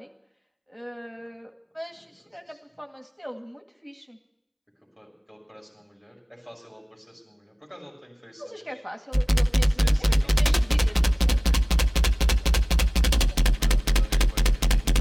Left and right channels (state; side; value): identical; both; correlation 1.00